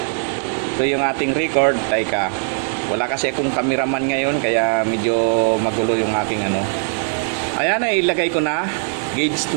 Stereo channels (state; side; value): silent; left; 63 dB below the other